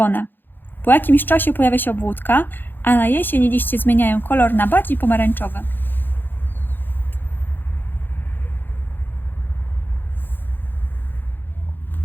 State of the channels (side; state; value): right; late; 0.095 ms